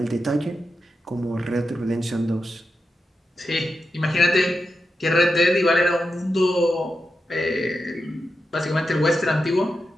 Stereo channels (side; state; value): both; normal; correlation 0.88